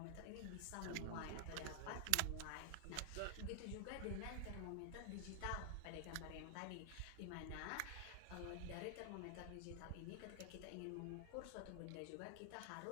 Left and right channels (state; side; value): different; both; correlation 0.00